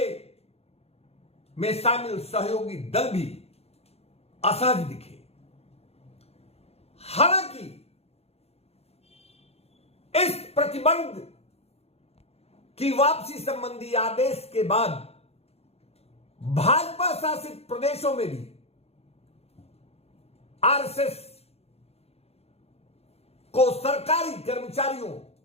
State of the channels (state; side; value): late; right; 0.30 ms